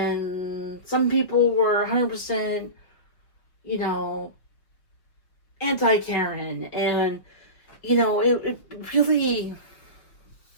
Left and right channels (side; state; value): right; late; 5.4 ms